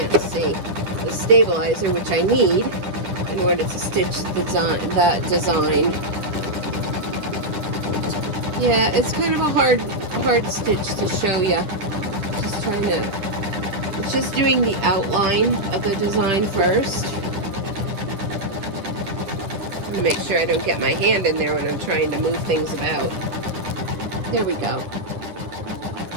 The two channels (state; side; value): late; left; 10 ms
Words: see? The stabilizer, which I need in order to stitch that design. Yeah, it's kind of a hard stitch to show you. Just trying to, it's just doing the outline of the design first. I'm gonna make sure I don't get my hand in there when I'm trying to move things about. There we go.